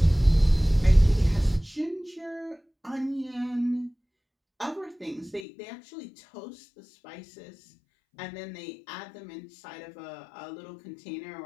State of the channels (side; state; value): right; drops out; at 5.5 s